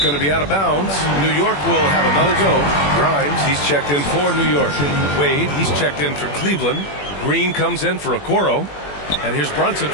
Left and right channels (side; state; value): right; late; 21 ms